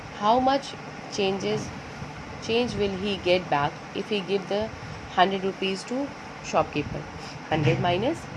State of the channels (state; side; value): identical; both; correlation 1.00